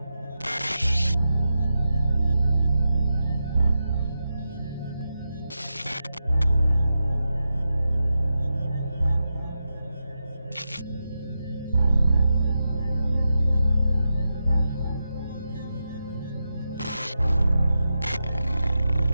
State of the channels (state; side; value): inverted; both; correlation -0.89